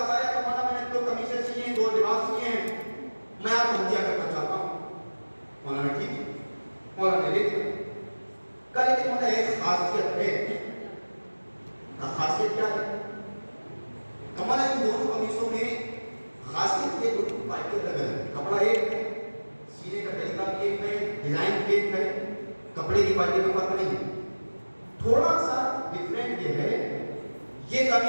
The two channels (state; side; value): inverted; both; correlation -1.00